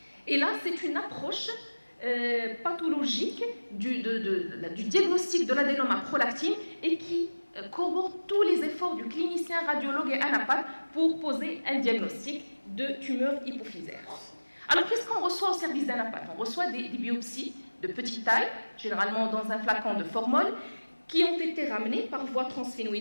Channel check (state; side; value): inverted; both; correlation -1.00